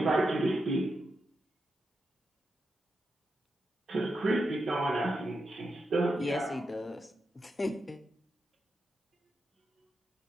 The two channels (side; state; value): both; normal; correlation 0.86